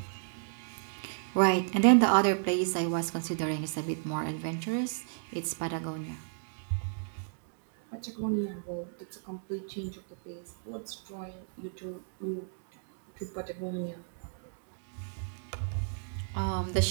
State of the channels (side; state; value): left; silent; digital silence